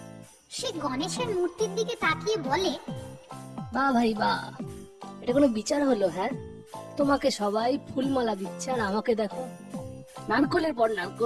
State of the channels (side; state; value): both; identical; correlation 1.00